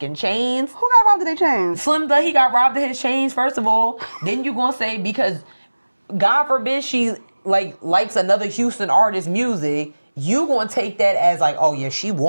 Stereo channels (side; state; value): both; inverted; correlation -1.00